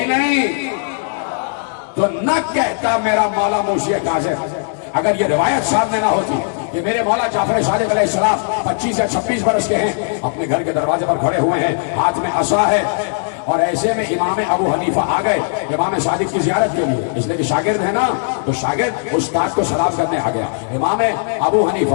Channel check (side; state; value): right; silent; digital silence